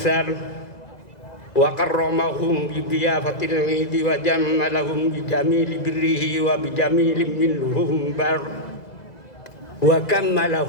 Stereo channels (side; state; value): right; late; 2.0 ms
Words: wa karramahum bi diyafatil 'idi wa jammalahum bi jamili birrihi wa bi jamilin minhum bar wa